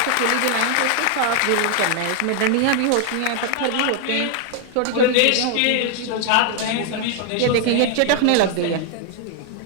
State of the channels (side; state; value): both; different; correlation 0.00